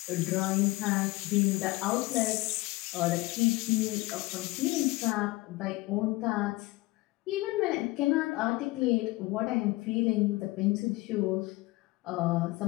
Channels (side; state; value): right; quieter; 21.3 dB